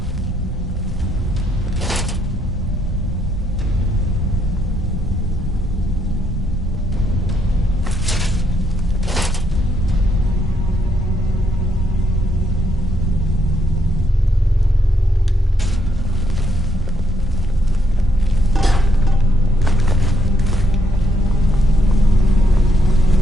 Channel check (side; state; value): both; normal; correlation 0.75